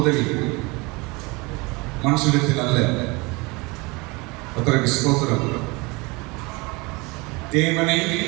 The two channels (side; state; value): left; quieter; 25.9 dB